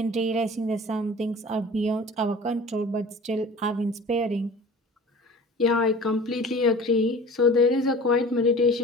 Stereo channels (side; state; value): both; normal; correlation 0.42